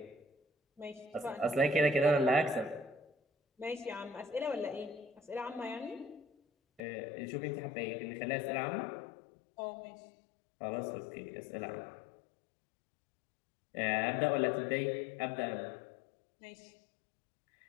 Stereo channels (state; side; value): drops out; right; at 6.8 s